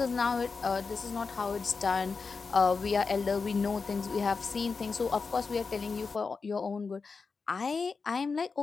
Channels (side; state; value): right; quieter; 4.8 dB